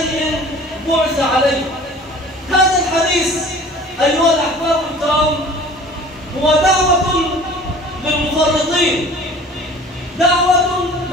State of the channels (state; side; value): normal; both; correlation 0.46